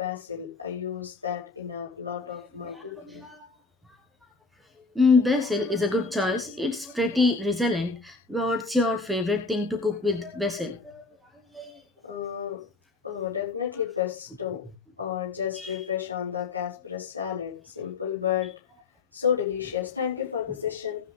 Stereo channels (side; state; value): right; quieter; 4.1 dB